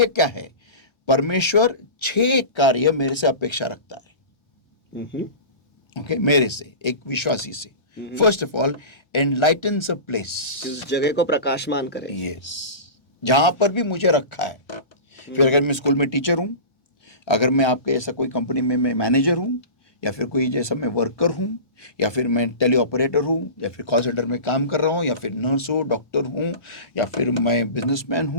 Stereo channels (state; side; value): late; right; 1.3 ms